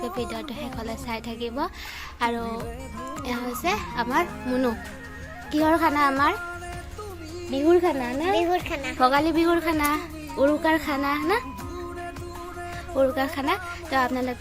ভিডিঅ'টো শেষলৈ চাই থাকিব আৰু এয়া হৈছে আমাৰ মুনু কিহৰ খানা আমাৰ বিহুৰ খানা না ভোগালী বিহুৰ খানা উৰুকাৰ খানা না উৰুকাৰ খানা তো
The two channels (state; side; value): identical; both; correlation 1.00